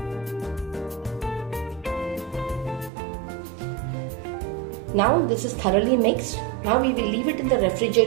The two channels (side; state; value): left; drops out; at 2.9 s